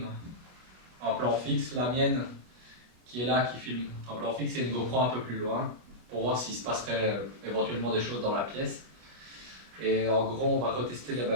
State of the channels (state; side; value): late; left; 25 ms